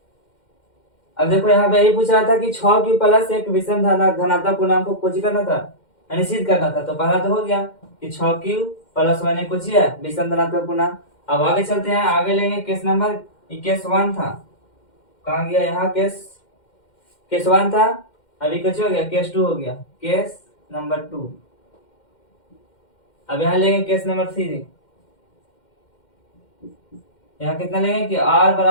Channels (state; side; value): late; right; 2.1 ms